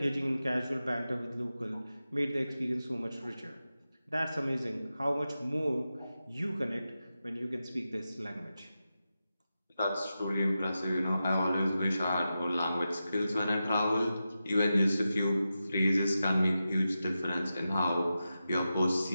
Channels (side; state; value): both; inverted; correlation -0.91